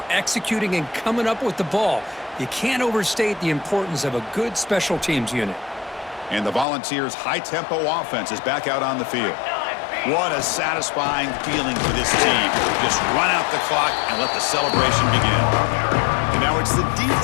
executing and coming up with the ball. You can't overstate the importance of a good special teams unit. And the Volunteers' high-tempo offense is back out on the field. What a satisfying feeling for this team. Just run out the clock and let the celebration begin. And now it's the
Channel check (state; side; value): drops out; right; at 6.7 s